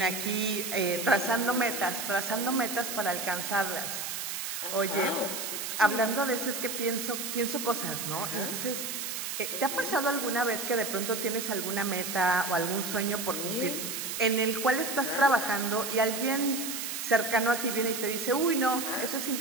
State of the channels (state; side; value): noise; right; hiss, 4 dB below the sound